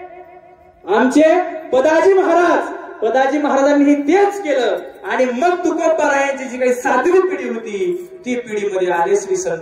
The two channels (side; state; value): both; identical; correlation 1.00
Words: आमचे पदाजी महाराज. पदाजी महाराजांनी तेच केलं. आणि मग तुकोबारायांची जी काही 7वी पिढी होती ती पिढीमध्ये आले श्री